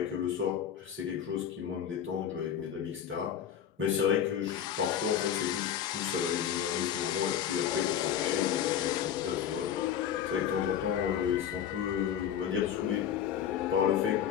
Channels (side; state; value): right; quieter; 9.3 dB